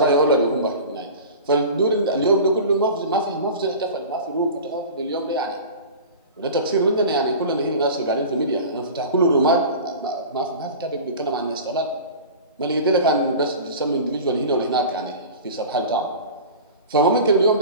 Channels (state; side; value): inverted; both; correlation -0.35